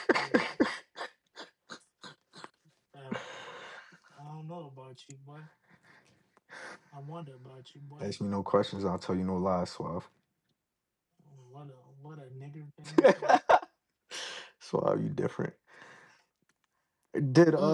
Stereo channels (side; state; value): both; identical; correlation 1.00